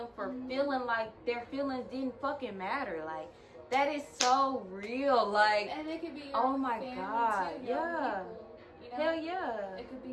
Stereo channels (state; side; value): identical; both; correlation 1.00